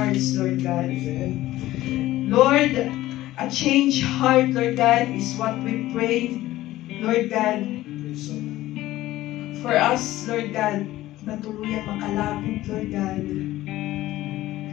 Lord God. Lord, a changed heart, Lord God, is what we pray, Lord God, for us, Lord God, na tuluyang makalapit, Lord God.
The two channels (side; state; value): right; quieter; 15.8 dB